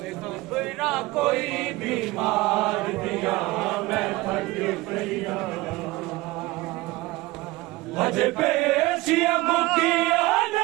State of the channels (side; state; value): left; quieter; 20.3 dB